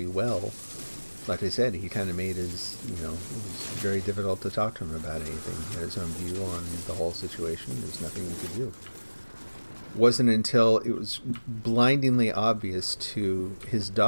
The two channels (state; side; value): inverted; both; correlation -1.00